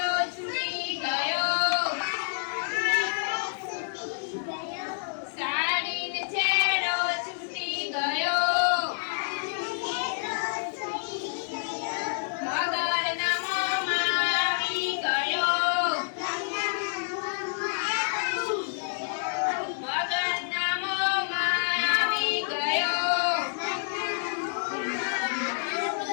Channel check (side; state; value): right; silent; digital silence